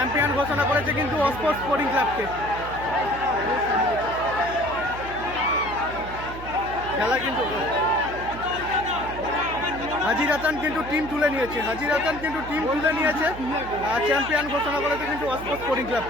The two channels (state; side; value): noise; right; hum, 12 dB below the sound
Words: ঘোষণা করেছে কিন্তু অস্পোর্ট স্পোর্টিং ক্লাবকে। খেলা কিন্তু হাজির হাসান কিন্তু টিম তুলে নিয়েছে, আর চ্যাম্পিয়ন ঘোষণা করেছে কিন্তু অস্পোর্ট স্পোর্টিং